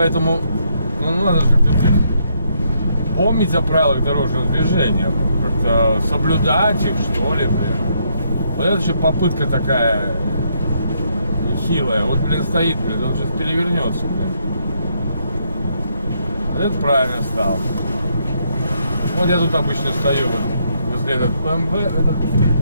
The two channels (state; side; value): inverted; both; correlation -0.75